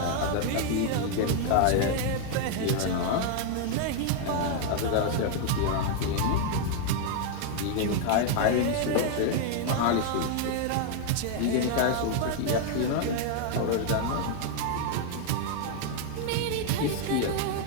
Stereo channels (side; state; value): both; different; correlation 0.00